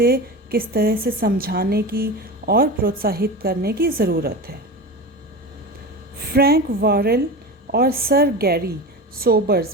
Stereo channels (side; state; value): both; normal; correlation 0.27